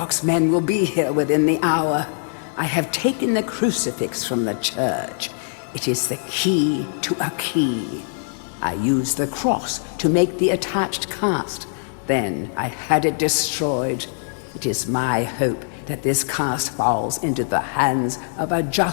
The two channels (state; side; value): silent; right; digital silence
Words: men will be here within the hour. I have taken the crucifix from the church. It is the key to a key. I used the cross to make the attached cast. Then I had it destroyed. It is my hope that this cast falls into the hands of a